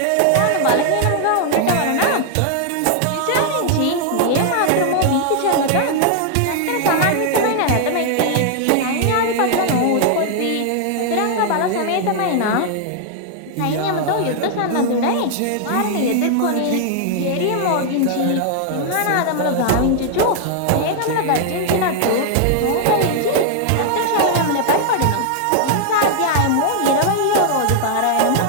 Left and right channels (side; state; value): both; different; correlation 0.00